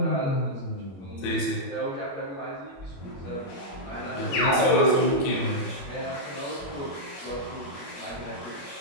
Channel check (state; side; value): late; right; 21 ms